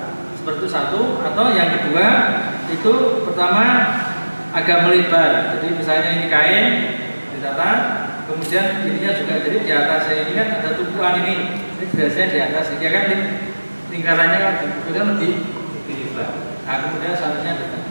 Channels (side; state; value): both; inverted; correlation -1.00